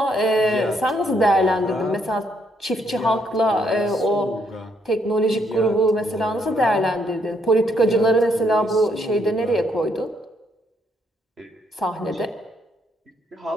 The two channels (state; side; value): normal; both; correlation 0.72